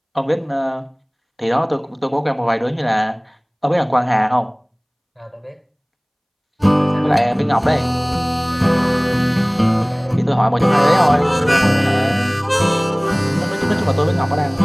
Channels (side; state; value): both; identical; correlation 1.00